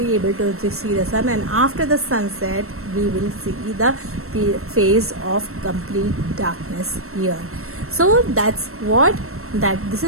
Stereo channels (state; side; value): late; left; 0.63 ms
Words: able to see the sun, and after the sunset we will see the phase of complete darkness here. So that's what this